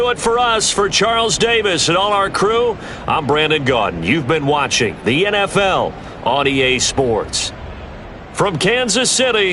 it for us. For Charles Davis and all our crew, I'm Brandon Gaudin. You've been watching the NFL on EA Sports. From Kansas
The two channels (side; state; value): both; identical; correlation 1.00